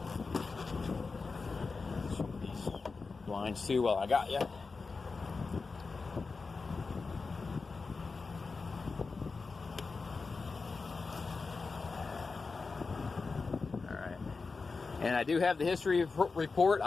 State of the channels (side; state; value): right; quieter; 4.3 dB